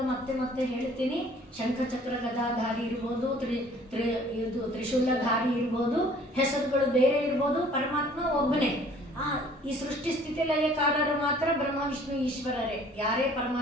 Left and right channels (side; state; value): both; normal; correlation 0.54